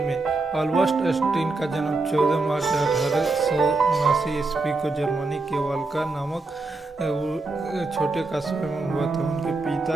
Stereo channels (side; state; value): left; quieter; 3.4 dB